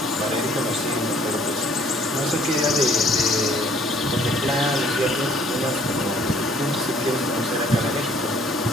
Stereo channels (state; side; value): normal; both; correlation 0.59